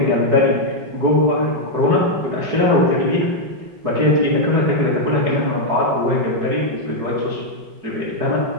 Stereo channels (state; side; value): late; left; 5.3 ms